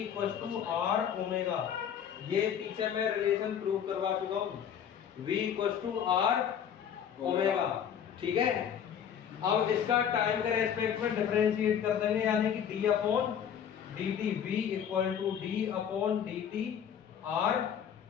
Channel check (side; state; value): right; quieter; 8.6 dB